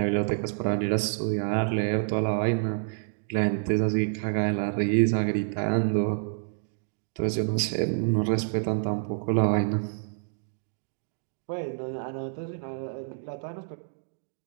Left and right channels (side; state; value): left; silent; digital silence